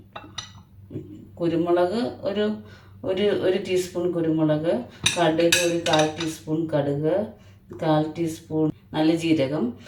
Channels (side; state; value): both; identical; correlation 1.00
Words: കുരുമുളക് ഒരു ടീസ്പൂൺ കുരുമുളക്, കടുക് ഒരു 1/4 ടീസ്പൂൺ കടുക്, 1/4 ടീസ്പൂൺ നല്ല ജീരകം,